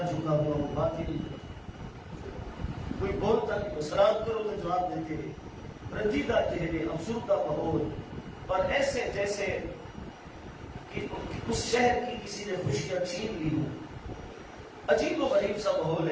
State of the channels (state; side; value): identical; both; correlation 1.00